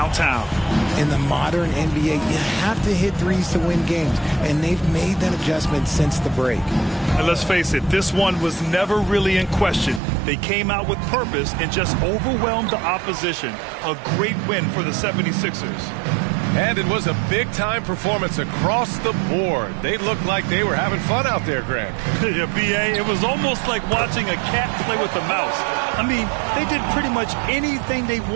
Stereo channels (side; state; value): left; drops out; at 10.0 s